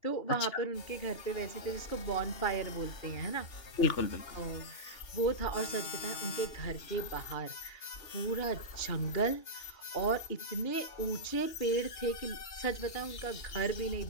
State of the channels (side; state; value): right; late; 2.8 ms